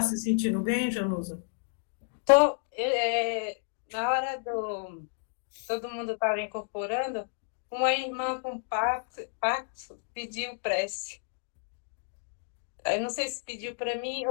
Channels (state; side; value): silent; right; digital silence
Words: se sentindo bem, Janusa? Tô. Na hora do... Todo mundo estava incorporando, uma irmã com pacto pediu prece. Eu não sei se pediu para mim